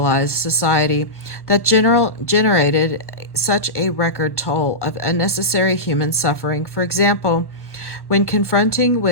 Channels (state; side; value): late; right; 1.2 ms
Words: society that generated such a record toll of unnecessary human suffering. For example, when confronting